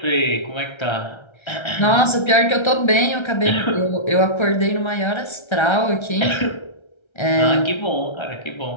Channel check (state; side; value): late; right; 1.3 ms